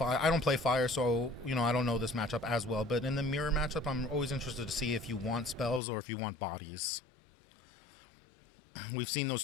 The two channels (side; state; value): right; drops out; at 5.8 s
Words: play Fire, so, I don't know this matchup as well. But in the mirror matchup, I'm always interested to see if you want spells or if you want bodies. We've seen